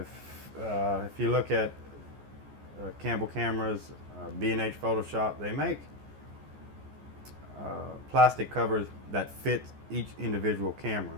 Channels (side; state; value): left; late; 14 ms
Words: you look at Campbell cameras, B&H Photoshop, they make plastic covers that fit each individual camera.